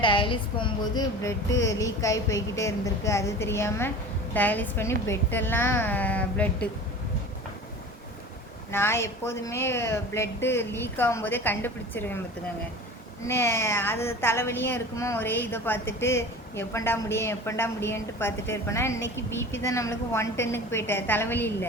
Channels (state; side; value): normal; both; correlation 0.37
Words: டயாலிஸ் போகும்போது ப்ளட்டு லீக் ஆகி போய்கிட்டே இருந்திருக்கு. அது தெரியாமல் டயாலிஸ் பண்ணி பெட்டெல்லாம் ப்ளட்டு. நான் எப்போதுமே ப்ளட்டு லீக் ஆகும்போதே கண்டுபிடிச்சிருவேன் பார்த்துக்கோங்க. அது தலைவலியும் இருக்குமோ, ஒரே இதை பார்த்துட்டு எப்பண்டா முடியும்ன்ட்டு பார்த்துட்டே இருப்பேன்னா, இன்றைக்கி பிபி தான் நம்மளுக்கு 110க்கு போயிட்டேன், தலைவலி